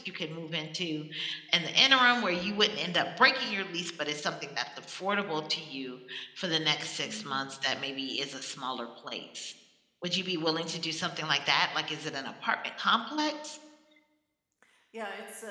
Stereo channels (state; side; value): identical; both; correlation 1.00